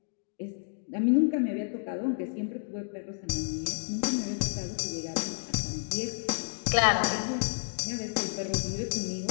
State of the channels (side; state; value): right; silent; digital silence